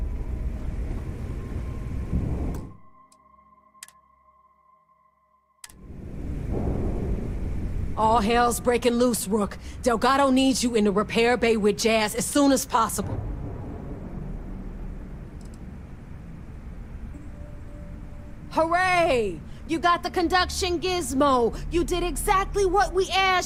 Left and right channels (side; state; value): both; identical; correlation 1.00